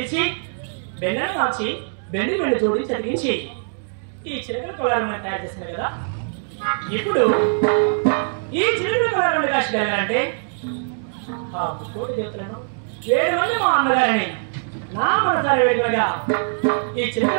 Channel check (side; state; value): left; silent; digital silence